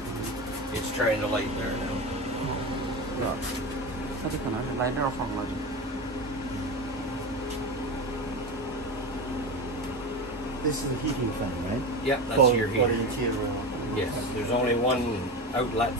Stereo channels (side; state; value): both; normal; correlation 0.23